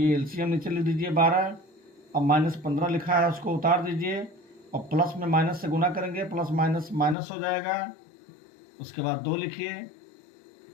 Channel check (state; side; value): drops out; right; at 7.2 s